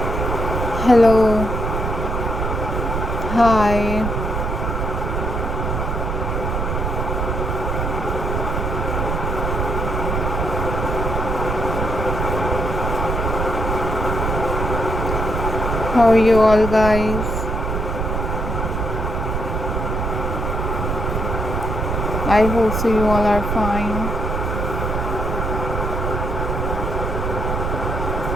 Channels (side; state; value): right; noise; rumble, 1 dB below the sound